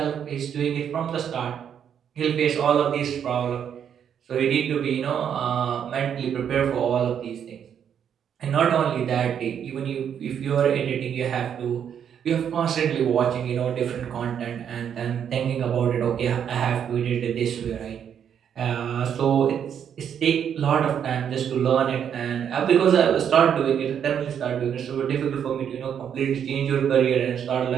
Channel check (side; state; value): left; quieter; 8.5 dB